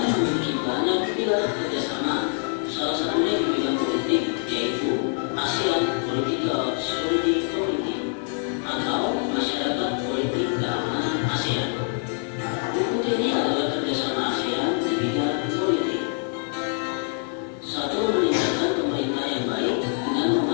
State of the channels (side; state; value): right; silent; 58 dB below the other